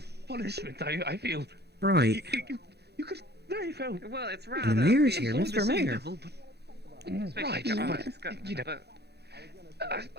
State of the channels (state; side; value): late; left; 0.48 ms